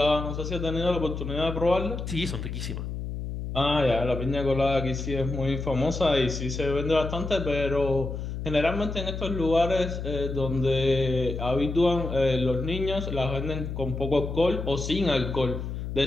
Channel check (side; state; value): left; noise; hum, 6 dB below the sound